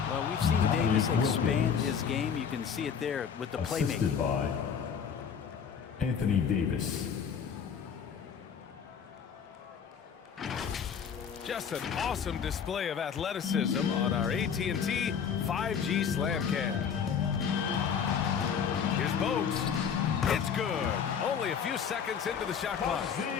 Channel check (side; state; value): right; quieter; 7.2 dB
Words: Well, we've seen Davis expand his game. You can see it there with the playmaking. By Anthony Davis. Just an awesome display of athleticism on our AT&T 5G slam cam. Here's Bogues. It's good. Only a few seconds into the shot clock.